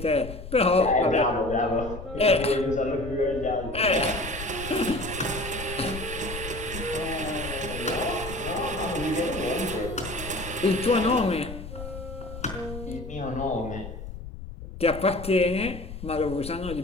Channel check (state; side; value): noise; left; rumble, 11 dB below the sound